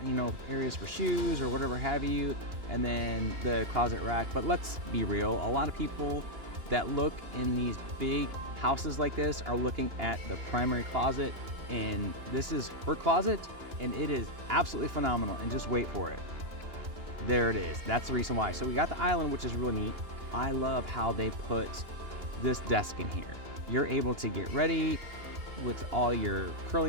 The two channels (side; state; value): left; late; 2.9 ms